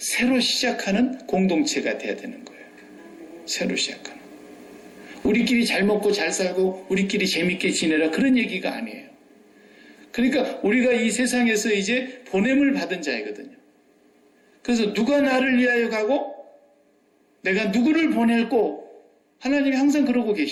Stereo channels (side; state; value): both; identical; correlation 1.00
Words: 시작하는 공동체가 돼야 되는 거예요. 새로 시작하는. 우리끼리 잘 먹고 잘 살고 우리끼리 재밌게 지내라, 그런 얘기가 아니에요. 그러니까 우리가 이 세상에서 이제 보냄을 받은 자이거든요. 그래서 누가 나를 위하여 가고 내가 누구를 보낼고, 하나님이 항상 그러고